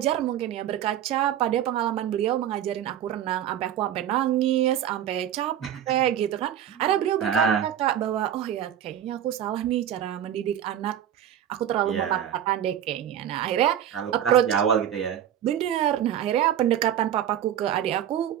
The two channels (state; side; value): quieter; left; 10.5 dB